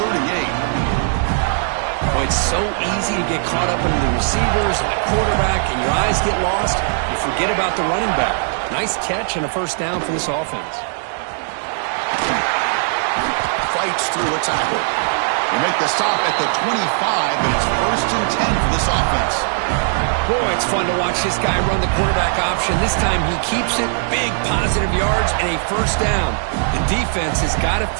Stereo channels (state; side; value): silent; left; digital silence